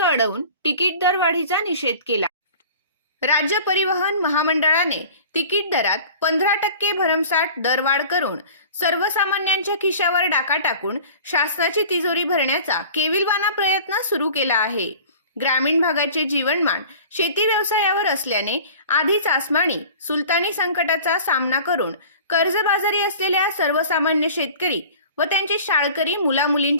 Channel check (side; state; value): both; inverted; correlation -0.43